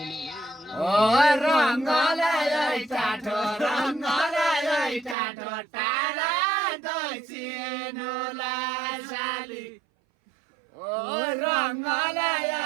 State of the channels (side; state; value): left; drops out; at 5.2 s